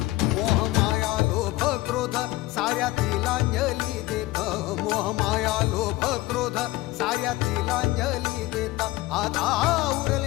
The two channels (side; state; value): right; quieter; 18.6 dB